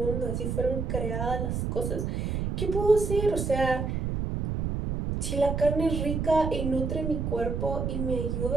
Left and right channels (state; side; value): noise; right; rumble, 1 dB below the sound